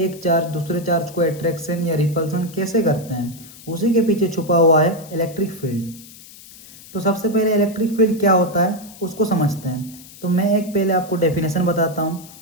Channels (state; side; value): noise; left; hiss, 19 dB below the sound